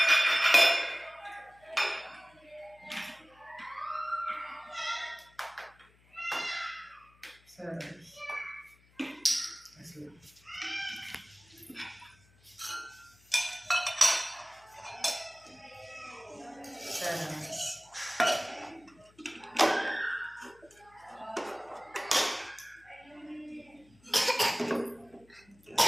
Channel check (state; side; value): noise; left; hum, 30 dB below the sound